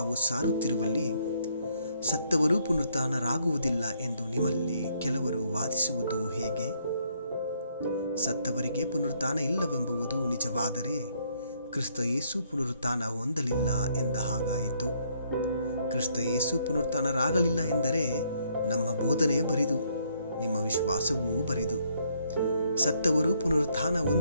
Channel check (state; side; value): inverted; both; correlation -0.69